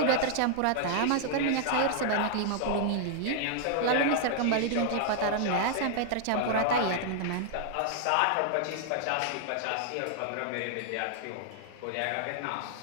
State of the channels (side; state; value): both; different; correlation -0.01